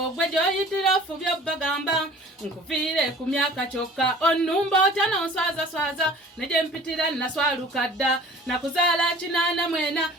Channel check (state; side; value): normal; both; correlation 0.47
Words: gwe gy'oyitira ofubye bagamba nkuviire ku myaka kyokka onnumba otya nonswazaswaza ne gye mpitira naswaluka dda nakuzaala 84